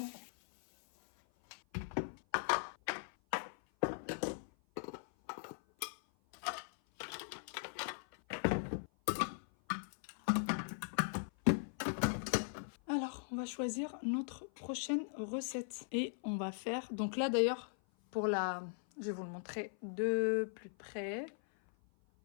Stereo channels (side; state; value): right; silent; 51 dB below the other